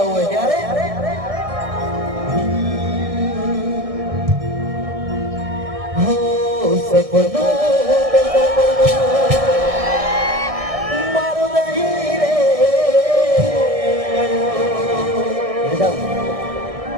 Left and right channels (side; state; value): left; late; 1.6 ms